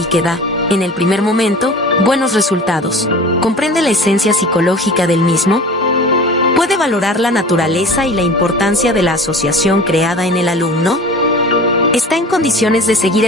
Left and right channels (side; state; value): both; normal; correlation 0.39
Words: que da, en el primer momento, buenos resultados, ¿comprende la esencia psicológica del mismo? ¿Puede valorar la naturaleza y la importancia de la asociación creada en el alumno? ¿Está en condiciones de seguir